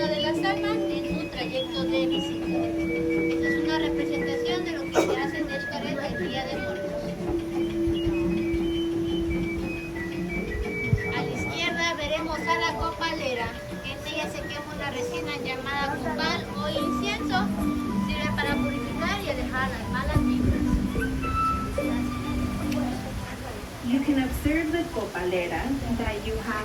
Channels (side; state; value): both; identical; correlation 1.00